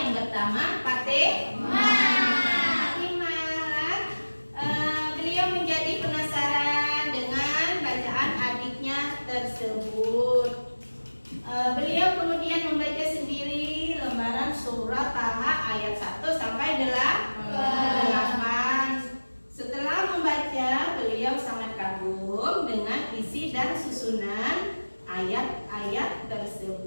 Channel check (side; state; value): both; inverted; correlation -1.00